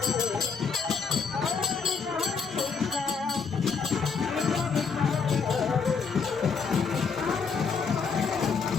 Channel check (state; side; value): quieter; right; 5.5 dB